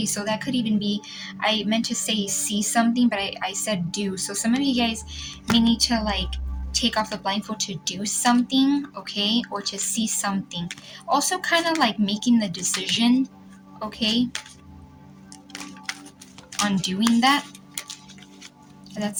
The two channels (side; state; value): both; identical; correlation 1.00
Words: so that could even be, I meant to say see something, but I said do. So some of you guys may need to like take off the blindfold to do something, okay, or to see something. Also, kind of like making the decision, okay, on doing that. That's